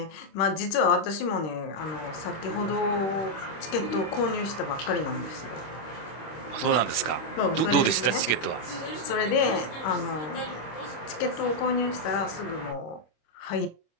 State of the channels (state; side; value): late; right; 25 ms